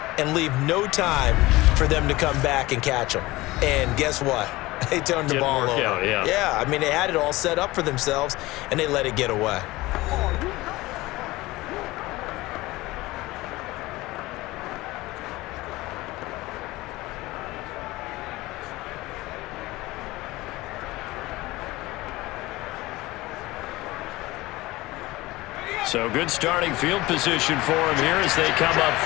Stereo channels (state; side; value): quieter; right; 19.6 dB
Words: and leave no time for them to come back and catch them. And guess what? They turned the ball over. Out, yeah. Yeah, I mean, they had it all set up for themselves, and they let it get away. So good starting field position for him here as they come up